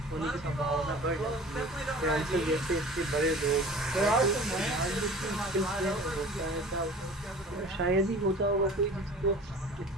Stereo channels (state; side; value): normal; both; correlation 0.42